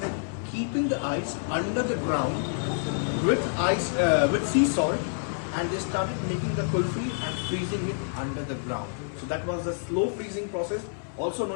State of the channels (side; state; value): right; silent; 59 dB below the other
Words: keeping the ice under the ground with sea salt, and they started making the kulfi and freezing it under the ground. So that was the slow freezing process, also